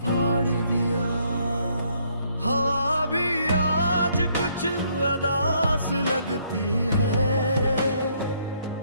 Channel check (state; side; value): inverted; both; correlation -0.69